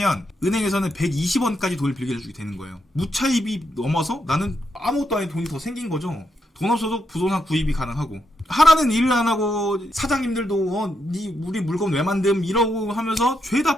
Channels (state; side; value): normal; both; correlation 0.81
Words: 은행에서는 120원까지 돈을 빌려주게 되는 거예요. 무차입이 넘어서 나는 아무것도 아닌 돈이 더 생긴 거죠. 돈 없어도 부동산 구입이 가능하고 하라는 일을 안 하고 사장님들도 우리 물건 왜 만듦 이러고 하면서